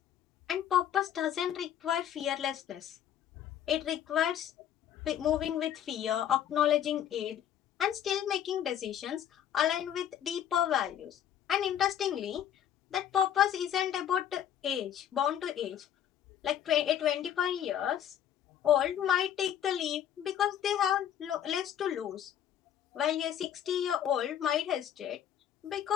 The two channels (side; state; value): right; quieter; 10.0 dB